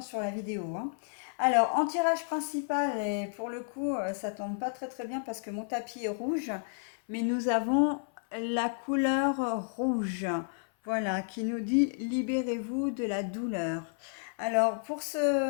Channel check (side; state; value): right; silent; 57 dB below the other